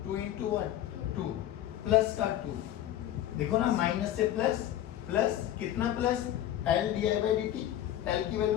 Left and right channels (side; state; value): right; quieter; 12.2 dB